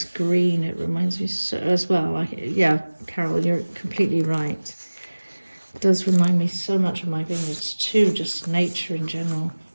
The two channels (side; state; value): both; inverted; correlation -1.00